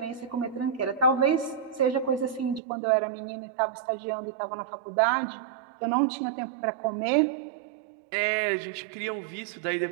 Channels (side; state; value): left; drops out; at 2.6 s